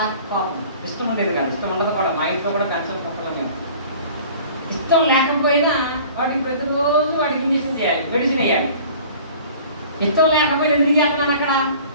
కోపం, ఇష్టం ఉండేది కాదు. ఇష్టం ఉండదు కూడా, మా ఇంట్లో కూడా పెంచని కుక్కలు మేము. ఇష్టం లేకపోయినా వాటికి ప్రతిరోజు వాటికి ఇంజక్షన్ చేయాలి, మెడిసిన్ వేయాలి. ఇష్టం లేకపోయినా ఎందుకు చేస్తున్నాను అక్కడ?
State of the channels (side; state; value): both; inverted; correlation -0.47